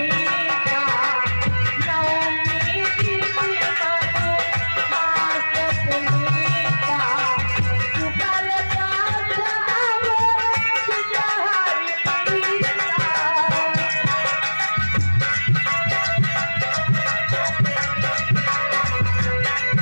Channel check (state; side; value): inverted; both; correlation -1.00